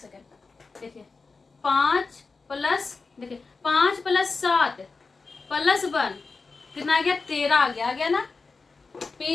देखिए 5 प्लस, देखिए 5 प्लस 7 प्लस 1 कितना आ गया, 13 आ गया ना।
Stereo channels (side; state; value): right; quieter; 4.2 dB